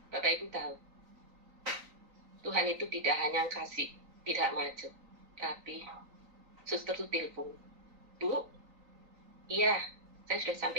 Bapak Ibu tahu, Tuhan itu tidak hanya kasih tidak macet, tapi suster itu telepon, Bu, iya, saya sudah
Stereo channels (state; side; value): late; left; 3.9 ms